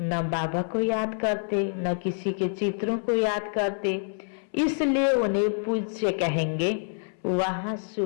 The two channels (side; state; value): right; silent; 60 dB below the other